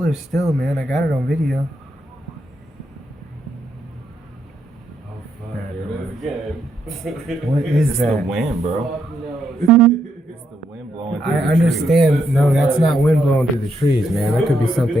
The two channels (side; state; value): both; normal; correlation 0.77